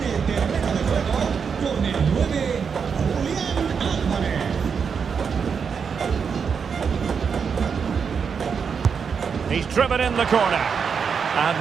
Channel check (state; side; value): quieter; left; 6.3 dB